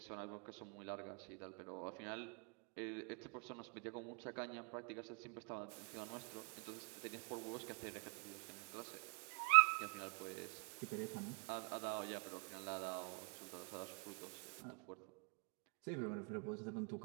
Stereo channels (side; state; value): left; quieter; 36.5 dB